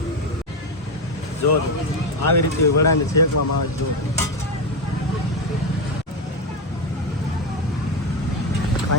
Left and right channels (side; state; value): both; normal; correlation 0.12